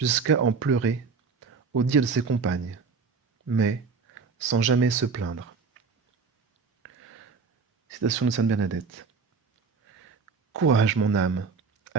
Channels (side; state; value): left; quieter; 4.9 dB